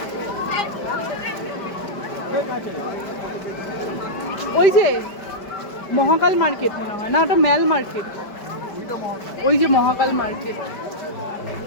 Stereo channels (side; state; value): right; late; 5.1 ms